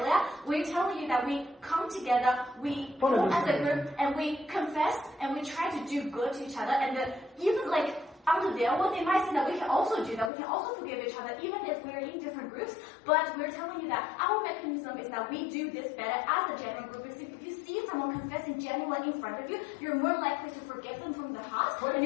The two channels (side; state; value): right; drops out; at 10.3 s